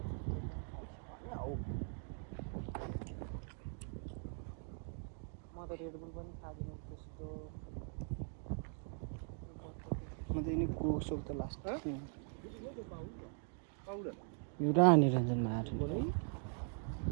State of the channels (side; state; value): left; silent; 50 dB below the other